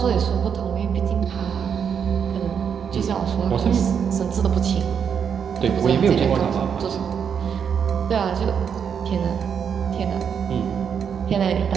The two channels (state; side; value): quieter; left; 7.4 dB